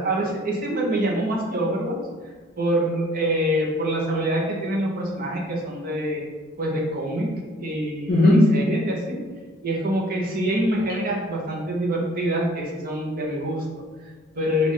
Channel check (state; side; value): normal; both; correlation 0.56